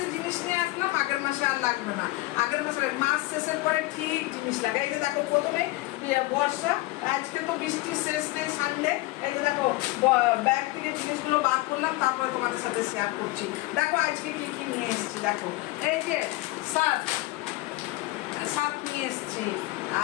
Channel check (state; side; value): quieter; right; 20.2 dB